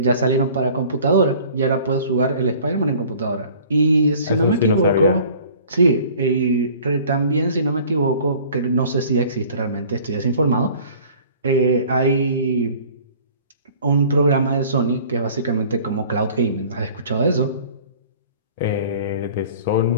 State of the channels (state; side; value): inverted; both; correlation -0.49